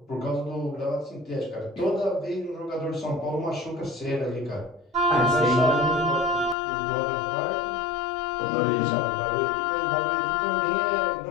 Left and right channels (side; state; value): right; drops out; at 6.6 s